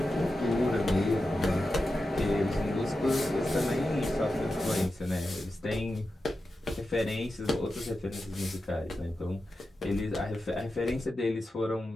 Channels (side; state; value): both; normal; correlation 0.91